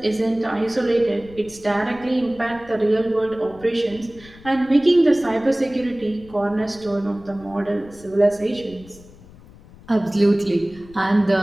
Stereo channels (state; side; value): noise; left; rumble, 22 dB below the sound